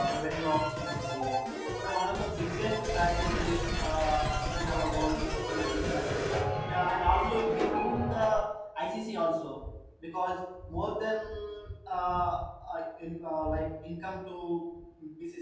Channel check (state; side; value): identical; both; correlation 1.00